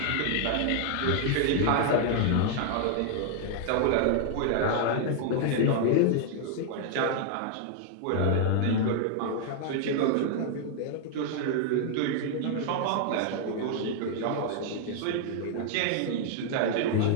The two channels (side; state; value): both; different; correlation 0.00